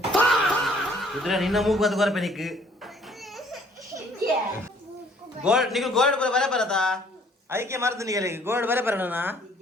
ಕುದುರೆ ನಿನ್ನ ಮೂಗು ಬತ್ತು ಕೊರಪೆ ನಿಕ್ಕು ಗೋಲ್ಡ್ ನಿಗು ಗೋಲ್ಡ್ ಬರ ಬರತಾ ಅದಕ್ಕೆ ಮರ್ದು ನಿಗಲಿ ಗೋಲ್ಡ್ ಬರ ಬರೋಣ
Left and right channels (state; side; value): normal; both; correlation 0.60